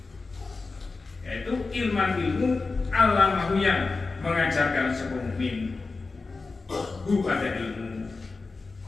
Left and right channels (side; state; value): right; quieter; 4.0 dB